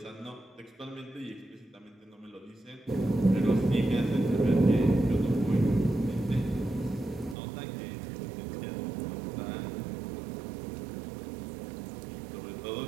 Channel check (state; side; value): drops out; left; at 7.4 s